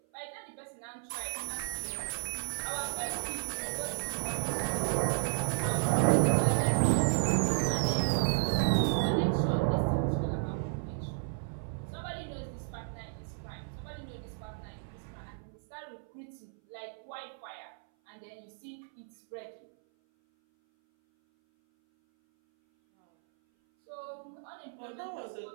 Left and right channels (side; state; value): left; silent; 56 dB below the other